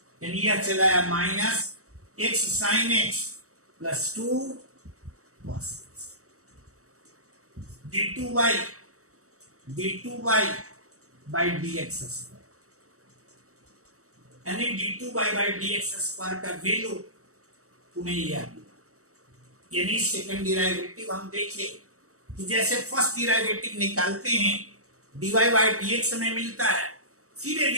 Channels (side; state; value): left; late; 0.65 ms